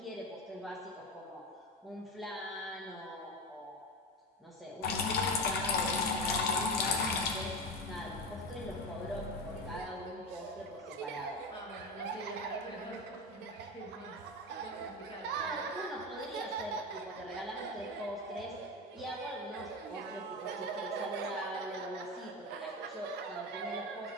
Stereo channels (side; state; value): both; normal; correlation 0.20